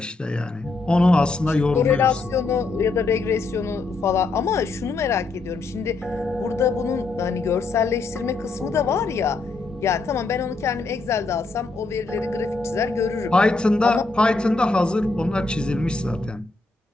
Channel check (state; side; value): quieter; right; 3.7 dB